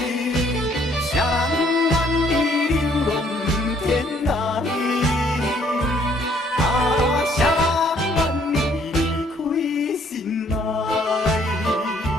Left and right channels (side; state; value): both; normal; correlation 0.64